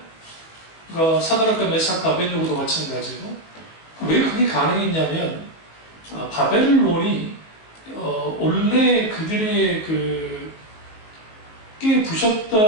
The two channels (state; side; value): late; right; 19 ms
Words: 그러니까 사드락과 메삭과 아벳느고도 마찬가지고. 왜 그게 가능했냐면 바벨론이 원래 그들의 꽤